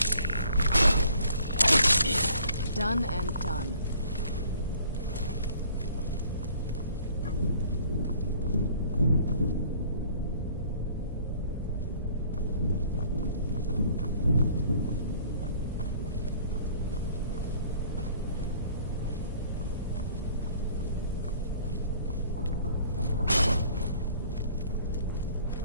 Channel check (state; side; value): inverted; both; correlation -0.55